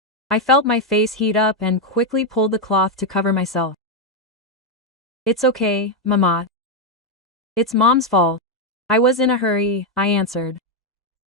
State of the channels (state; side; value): normal; both; correlation 0.03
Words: I felt my face heat up and quickly pulled the cloth to cover myself. It's okay, Mamat. It's Mom's fault. I was in a hurry, I answered,